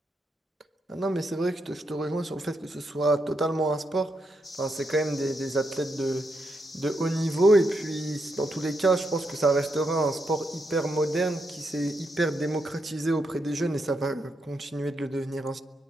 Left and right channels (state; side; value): normal; both; correlation 0.81